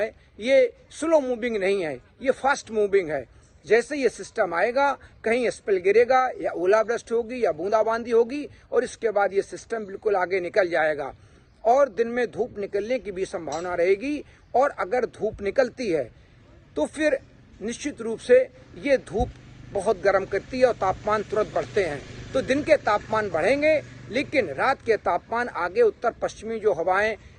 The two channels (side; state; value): both; identical; correlation 1.00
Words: ये स्लो मूविंग नहीं है, ये फास्ट मूविंग है। जैसे ये सिस्टम आएगा, कहीं स्पेल गिरेगा या ओलावृष्टि होगी या बूंदाबांदी होगी और इसके बाद ये सिस्टम बिल्कुल आगे निकल जाएगा और दिन में धूप निकलने की भी संभावना रहेगी। और अगर धूप निकलती है तो फिर निश्चित रूप से ये धूप बहुत गर्म करती है और तापमान तुरंत बढ़ते हैं। तो दिन के तापमान बढ़ेंगे, लेकिन रात के तापमान आगे उत्तर पश्चिमी जो हवाएं